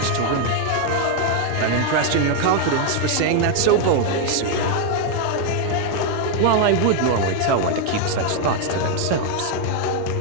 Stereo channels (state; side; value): different; both; correlation 0.00